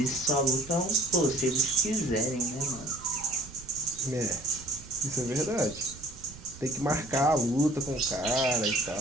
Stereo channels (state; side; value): noise; right; rumble, 18 dB below the sound